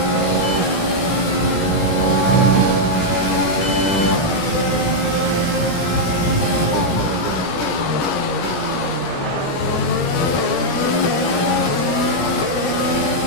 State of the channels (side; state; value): right; late; 17 ms